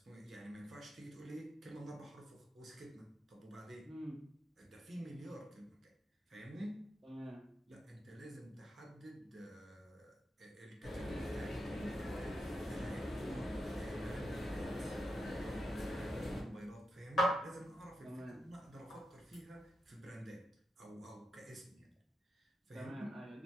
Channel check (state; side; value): normal; both; correlation 0.87